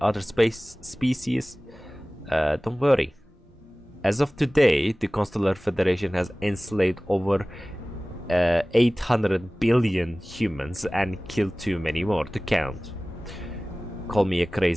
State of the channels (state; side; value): normal; both; correlation 0.98